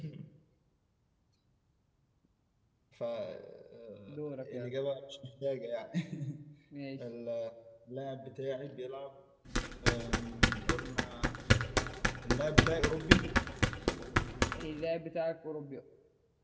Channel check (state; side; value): identical; both; correlation 1.00